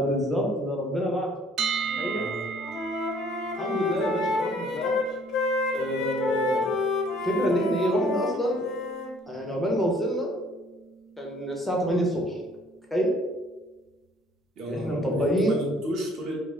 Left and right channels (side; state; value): both; normal; correlation 0.59